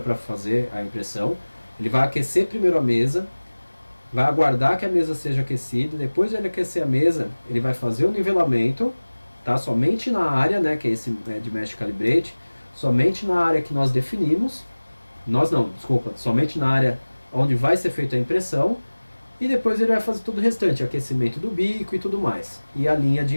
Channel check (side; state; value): both; inverted; correlation -1.00